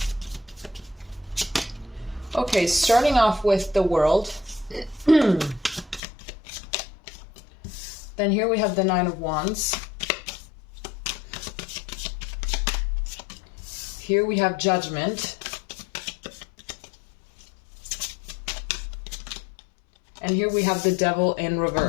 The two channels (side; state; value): right; drops out; at 6.0 s